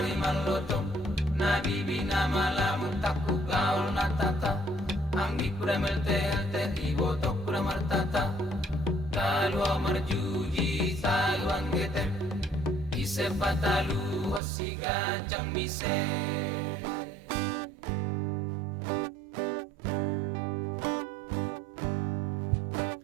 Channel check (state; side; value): drops out; left; at 14.4 s